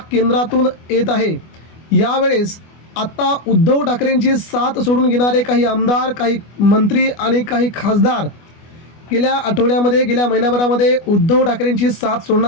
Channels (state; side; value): late; right; 25 ms